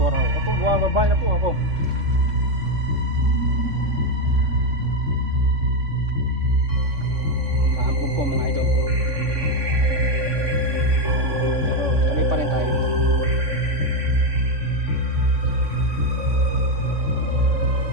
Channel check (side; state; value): left; late; 3.5 ms